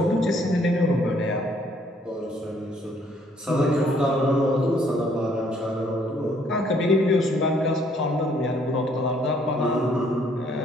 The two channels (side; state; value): both; normal; correlation 0.65